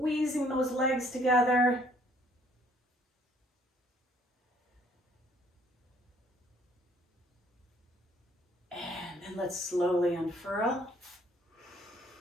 those legs together. And then let's slowly unfurl.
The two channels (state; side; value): normal; both; correlation 0.62